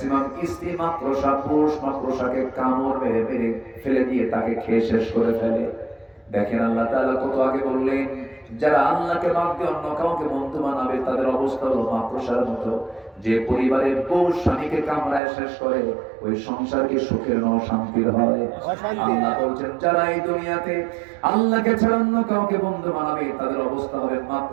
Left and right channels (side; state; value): left; drops out; at 15.2 s